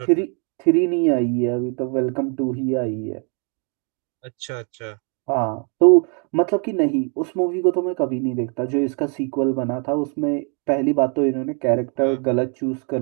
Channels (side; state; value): left; quieter; 39.0 dB